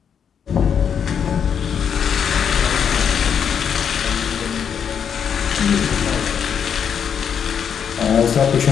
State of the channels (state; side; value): quieter; right; 7.7 dB